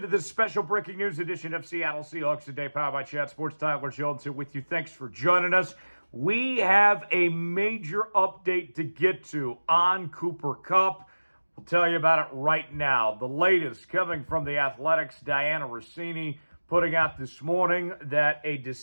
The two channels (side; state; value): both; inverted; correlation -1.00